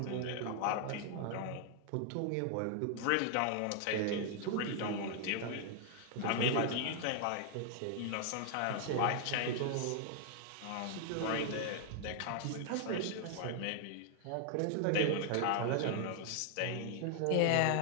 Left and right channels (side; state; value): both; different; correlation 0.00